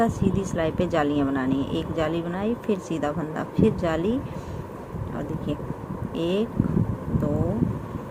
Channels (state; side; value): identical; both; correlation 1.00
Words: सीधी सिलाई पे जालियाँ बनानी है। एक जाली बनाई, फिर सीधा फंदा, फिर जाली और देखिए 1 2